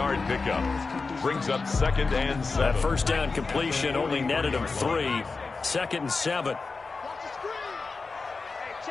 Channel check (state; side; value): quieter; right; 4.2 dB